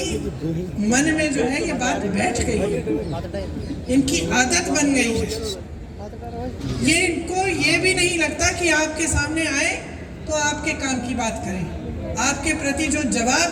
मन में जो है ये बात बैठ गई है, इनकी आदत बन गई है। ये इनको ये भी नहीं लगता कि आपके सामने आए तो आपके काम की बात करें। आपके प्रति जो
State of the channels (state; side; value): identical; both; correlation 1.00